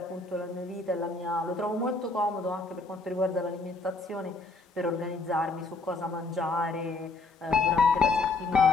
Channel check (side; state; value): right; quieter; 3.5 dB